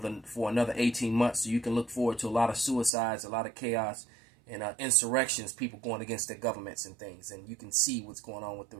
another 18 months. So you can look forward to a lot of suicides, a lot of chaos, and insurrections, people going against their governments and things. And you can see what's going on with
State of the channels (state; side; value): drops out; left; at 2.9 s